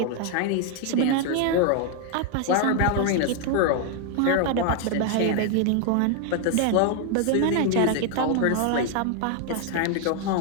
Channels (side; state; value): both; different; correlation 0.00